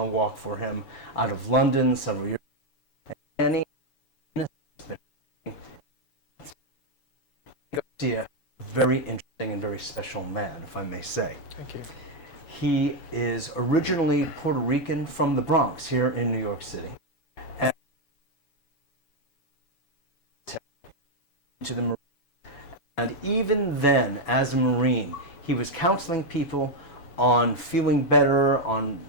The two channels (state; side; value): late; right; 7.0 ms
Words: walk for him out of London several years ago. Garcia, very interesting and very special man, if I may say. Thank you. He is originally Puerto Rican from the Bronx here in New York City. And to the Marine. And even then, as a Marine, he was counseling people on feeling better, on